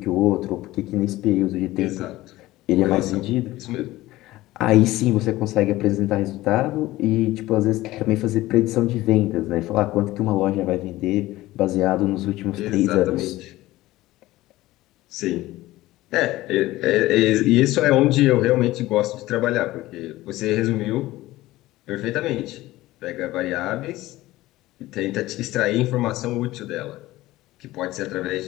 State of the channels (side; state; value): right; quieter; 17.3 dB